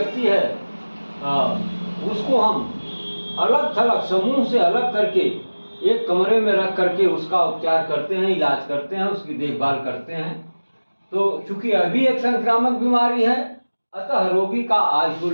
है उसको हम अलग थलग समूह से अलग करके एक कमरे में रख करके उसका उपचार करते हैं, इलाज करते हैं, उसकी देखभाल करते हैं। तो चूंकि अभी एक संक्रामक बीमारी है, अतः रोगी का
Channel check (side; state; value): both; inverted; correlation -1.00